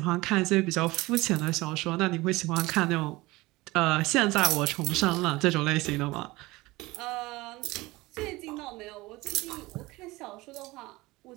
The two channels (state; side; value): quieter; left; 20.8 dB